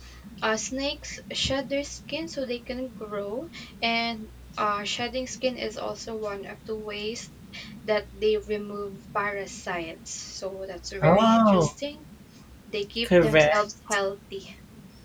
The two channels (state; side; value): identical; both; correlation 1.00